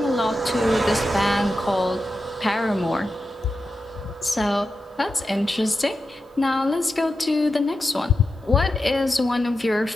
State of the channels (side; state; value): both; normal; correlation 0.90